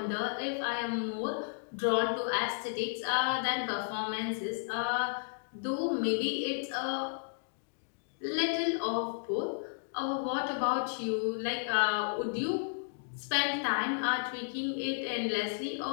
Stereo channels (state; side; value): silent; right; digital silence